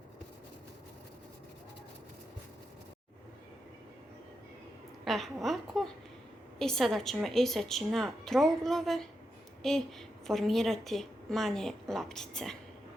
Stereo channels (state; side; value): normal; both; correlation 0.86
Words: ovako. I sada ćemo iseći na trouglove i formirati manje loptice.